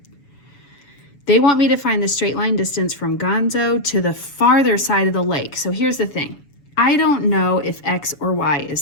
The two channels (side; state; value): right; late; 7.0 ms